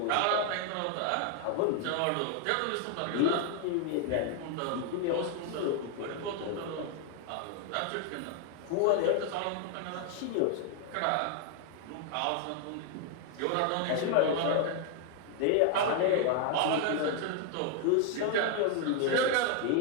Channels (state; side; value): different; both; correlation 0.00